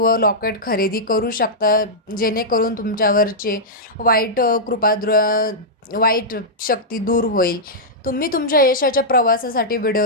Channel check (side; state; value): both; normal; correlation -0.09